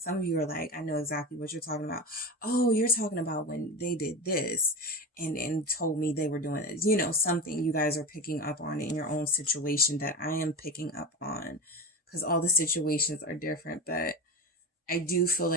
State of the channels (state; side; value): normal; both; correlation 0.24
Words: Some of you are like, I know exactly what you're talking about. Oh, you're talking about when they did this and told me they were doing this. You know, something you guys are picking up on in your own situation that I am picking up on, because all the situations are different. But I do feel